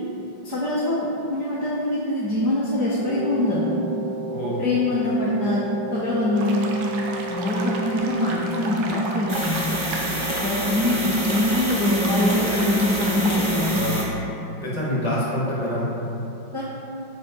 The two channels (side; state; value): left; late; 5.4 ms